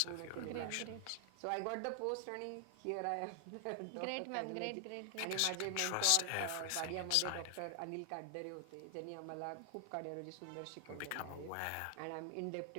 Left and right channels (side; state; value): both; different; correlation 0.00